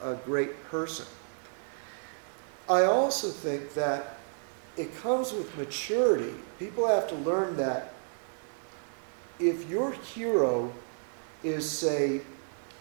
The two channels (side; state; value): left; silent; digital silence